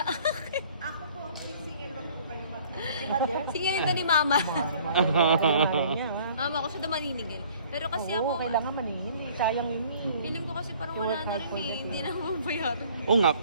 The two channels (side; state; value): both; inverted; correlation -0.54